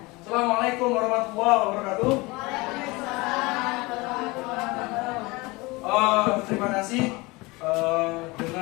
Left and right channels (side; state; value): right; quieter; 23.6 dB